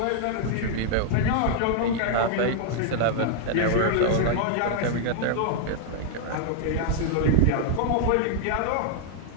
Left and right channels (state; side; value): different; both; correlation 0.00